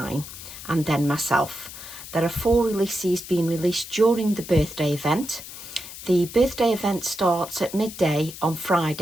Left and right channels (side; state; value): left; noise; hiss, 13 dB below the sound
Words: and then myself. There are 4 releases being released during the birthday event. The birthday event starts at midday on